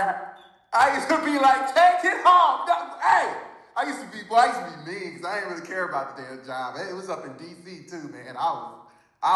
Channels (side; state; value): both; identical; correlation 1.00